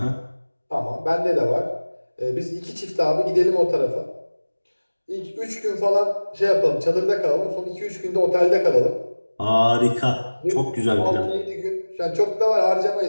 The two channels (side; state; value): both; inverted; correlation -1.00